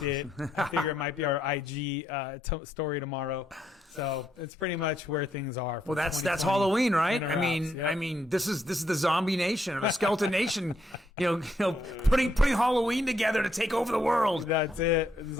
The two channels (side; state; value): both; normal; correlation 0.76